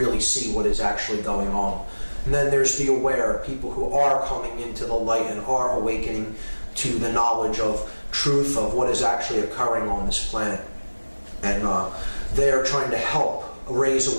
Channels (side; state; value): both; inverted; correlation -1.00